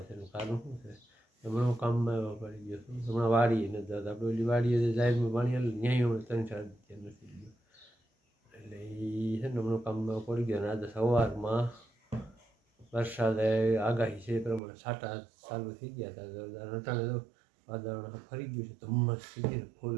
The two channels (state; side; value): drops out; left; at 14.6 s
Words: છે. એનું કારણ શું છે? હમણાં હું કામમાં એવો પડી ગયો છું. હમણાં વાડીએ નથી જતા. આપણે ઓલી વાડીએ જે જાહેરમાં પાણી હાલે ન્યાય હમણાં 3-4 દિવસ નથી ગયો. એટલે એ છે ને હમણાં કામમાં પડી ગયો. અને આજે સવારમાં વરસાદે આગાહી છે એ પ્રમાણે છાંટા ચાલુ થઈ ગયા હતા. જોરદાર અટાણે તો વાતાવરણ ફરી ગયું છે. ધુમ્મસ થઈ ગયું